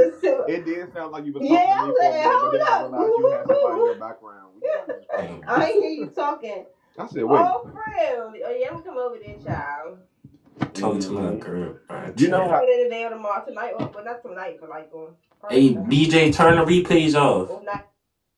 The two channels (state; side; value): identical; both; correlation 1.00